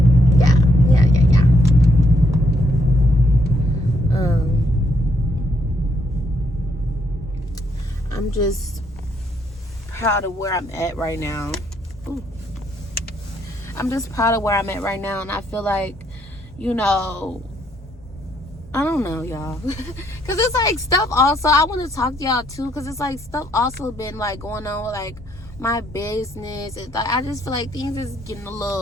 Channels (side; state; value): both; normal; correlation 0.72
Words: I'm just proud of where I'm at right now. Ooh. I'm just proud of where I'm at right now, and I feel like, you know, I don't know, y'all. Because it's like stuff also, I want to talk to y'all too, because it's like stuff also been like going on with like my business. It's like, I just feel like things is getting a